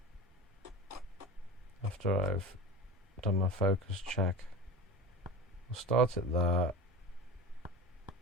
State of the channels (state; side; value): normal; both; correlation 0.31